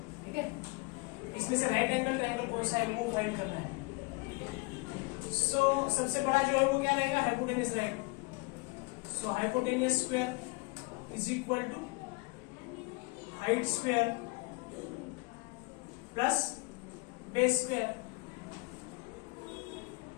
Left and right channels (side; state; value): right; quieter; 26.5 dB